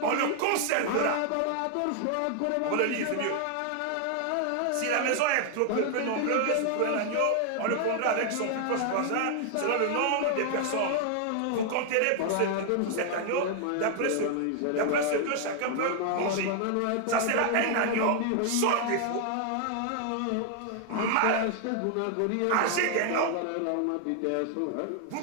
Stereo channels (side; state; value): both; different; correlation 0.00